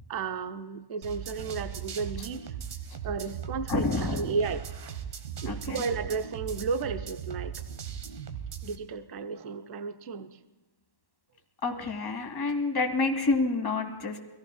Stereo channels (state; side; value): late; right; 1.1 ms